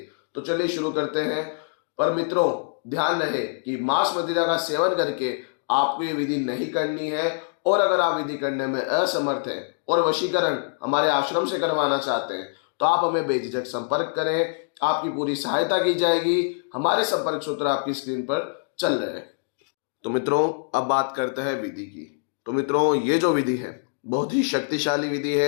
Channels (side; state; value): right; silent; digital silence